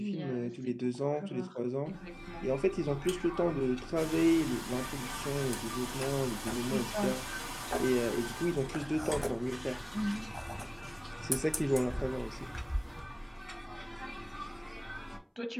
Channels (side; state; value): both; identical; correlation 1.00